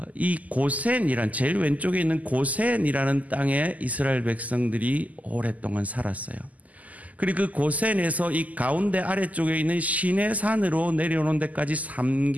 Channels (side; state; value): left; late; 0.076 ms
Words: 이 고센이란 제일 왼쪽에 있는 고센이라는 땅에 이스라엘 백성들이 오랫동안 살았어요. 그리고 그 고센에서 이 가운데 아래쪽에 있는 시내산으로 내려오는 데까지